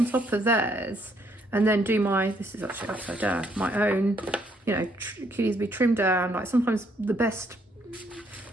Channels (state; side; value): normal; both; correlation 0.70